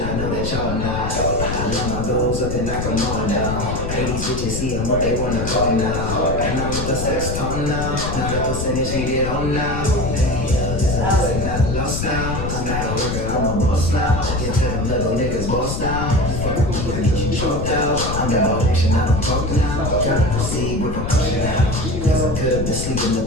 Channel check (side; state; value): left; noise; rumble, 4 dB below the sound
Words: I know that y'all not. I love my goals up and knock them all down. Hey, these bitches see them what they wanna call now. And I'm with the sex tone now. Now the percentage needed on now. I'm not lost now. I'm not a worker, I'm a boss now. Get to them little niggas boss now. Fuck with me, I get you choked out. I'm about action, I don't talk now. Gotta proceed with precaution now. Cause I could be sleeping